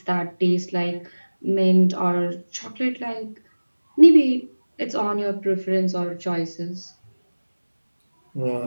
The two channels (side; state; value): both; inverted; correlation -1.00